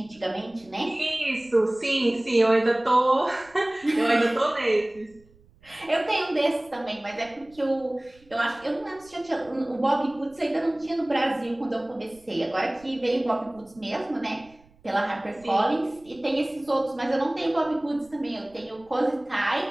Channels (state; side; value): noise; right; rumble, 29 dB below the sound